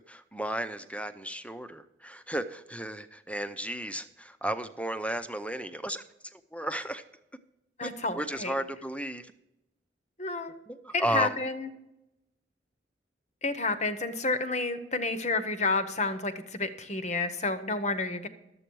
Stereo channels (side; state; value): both; normal; correlation 0.18